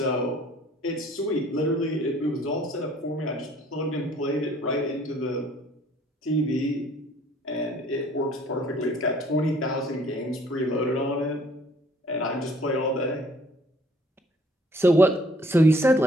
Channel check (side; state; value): both; normal; correlation 0.58